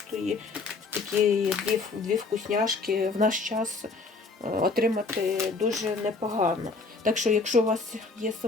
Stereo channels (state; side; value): quieter; right; 3.9 dB